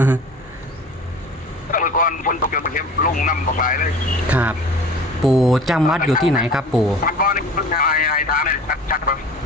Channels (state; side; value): normal; both; correlation 0.42